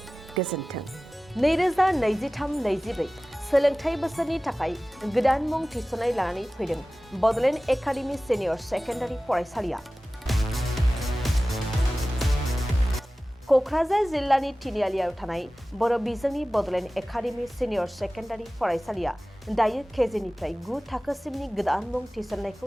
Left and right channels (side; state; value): both; normal; correlation 0.97